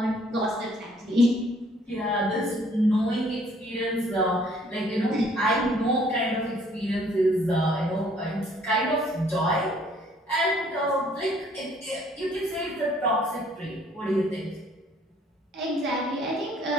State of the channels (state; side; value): normal; both; correlation 0.61